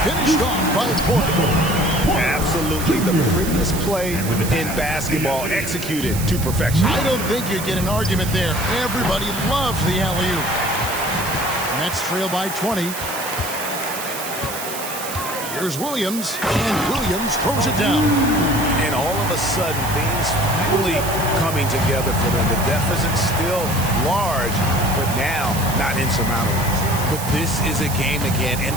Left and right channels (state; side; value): noise; right; hiss, 8 dB below the sound